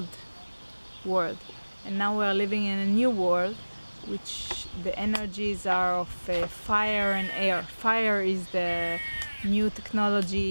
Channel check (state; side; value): inverted; both; correlation -1.00